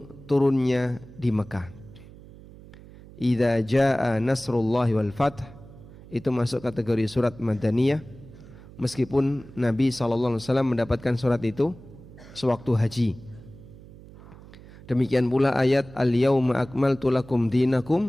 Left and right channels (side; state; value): right; noise; hum, 19 dB below the sound